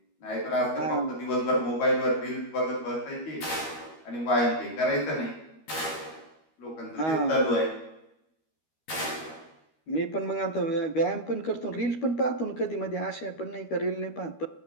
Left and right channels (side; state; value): right; late; 13 ms